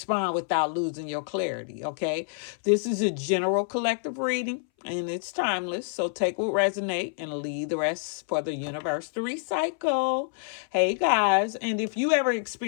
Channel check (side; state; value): right; silent; 60 dB below the other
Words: without losing your clarity, okay? This is a general collective reading and it's timeless. So take what resonate and leave the rest for the universe to recycle. Hey guys, and if you ever